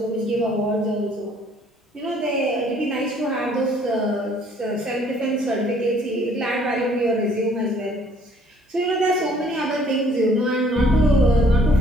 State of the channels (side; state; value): both; normal; correlation 0.60